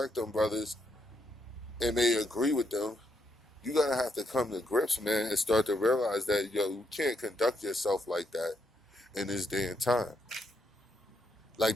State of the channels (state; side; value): normal; both; correlation 0.78